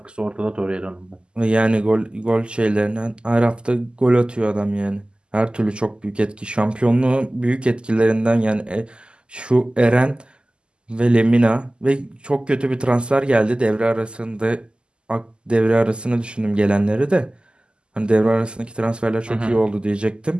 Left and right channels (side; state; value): left; late; 0.049 ms